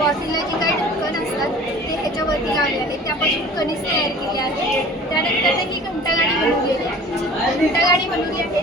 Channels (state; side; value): normal; both; correlation 0.44